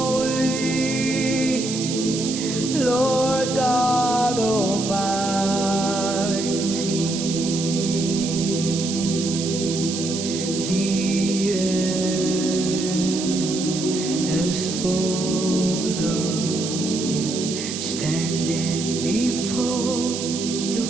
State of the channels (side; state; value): right; noise; hiss, 6 dB below the sound